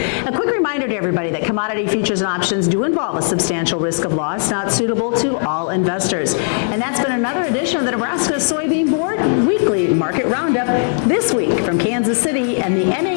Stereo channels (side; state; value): right; silent; 63 dB below the other